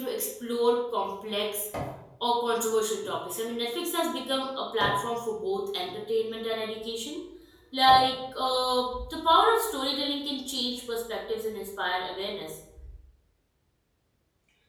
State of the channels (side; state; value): both; identical; correlation 1.00